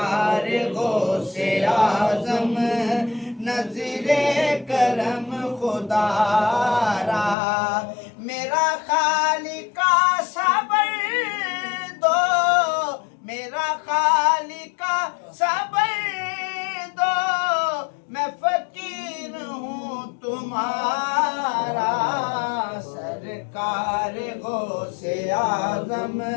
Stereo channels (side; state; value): right; drops out; at 7.4 s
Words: غوث اعظم نظر کرم خدا را میرا خالق صبر دو میرا خالق صبر دو میں فقیر ہوں تمہارا سرکار غوث اعظم